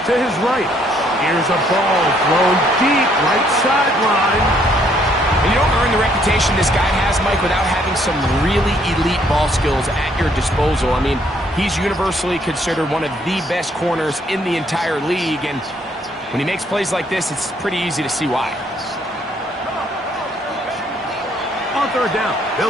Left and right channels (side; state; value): both; normal; correlation 0.67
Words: to his right. Here's a ball thrown deep right sideline. And you don't earn the reputation this guy has, Mike, without having some really elite ball skills at your disposal. I mean, he's universally considered one of the best corners in the entire league, and when he makes plays like this, it's pretty easy to see why. On third down,